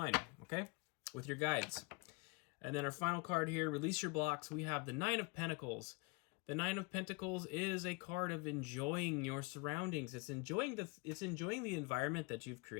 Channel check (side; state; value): right; quieter; 28.1 dB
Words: okay? With your guides. And then our final card here, release your blocks. We have the Nine of Pentacles. The Nine of Pentacles is a card of enjoying your surroundings. It's enjoying the environment that you've